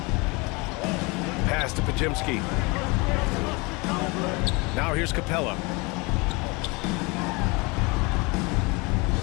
Pass to Pajimski. Now here's Capella.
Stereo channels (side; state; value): right; quieter; 27.1 dB